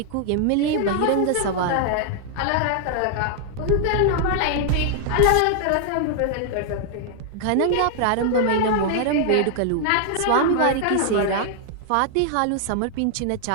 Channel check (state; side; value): different; both; correlation -0.01